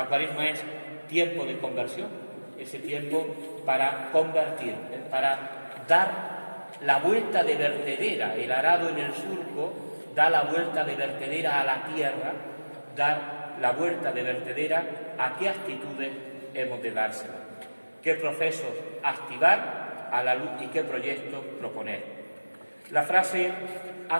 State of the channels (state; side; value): inverted; both; correlation -1.00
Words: Cuaresma es tiempo de conversión, ese tiempo para convertir, para dar la vuelta de vertedera. El arado en el surco da la vuelta de vertedera a la tierra, dar la vuelta de vertedera a qué actitudes hemos de dársela, qué procesos activar a la luz y qué proyectos proponer. La frase ha